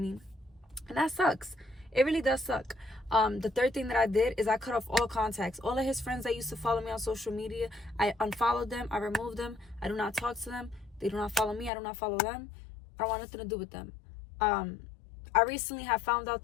And that sucks. It really does suck. The third thing that I did is I cut off all contacts. All of his friends that used to follow me on social media, I unfollowed them. I removed them. I do not talk to them. They do not follow me. I do not follow them. I don't want nothing to do with them. I recently have found out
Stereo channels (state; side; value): drops out; right; at 11.7 s